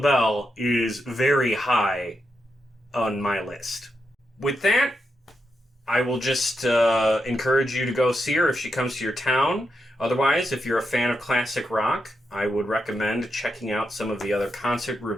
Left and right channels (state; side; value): normal; both; correlation 0.85